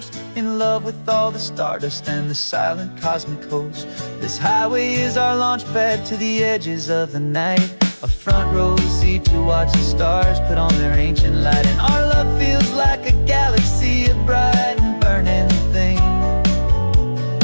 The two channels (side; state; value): both; inverted; correlation -1.00